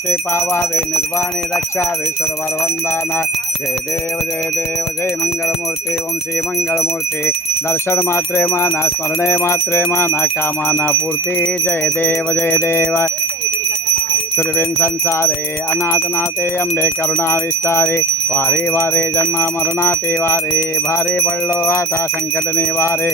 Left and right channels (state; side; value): normal; both; correlation 0.40